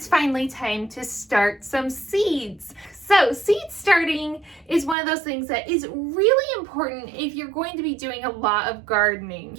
finally time to start some seeds. So seed starting is one of those things that is really important if you're going to be doing a lot of gardening.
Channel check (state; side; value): drops out; left; at 5.0 s